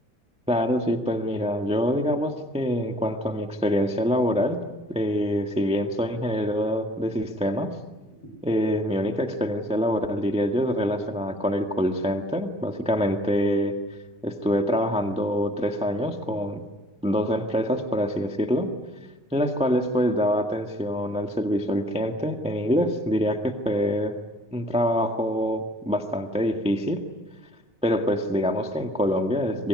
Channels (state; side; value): normal; both; correlation 0.57